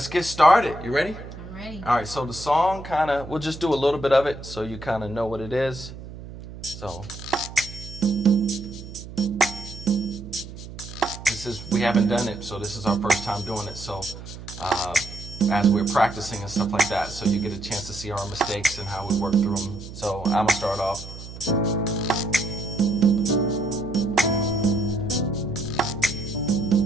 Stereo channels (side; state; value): right; noise; hum, 13 dB below the sound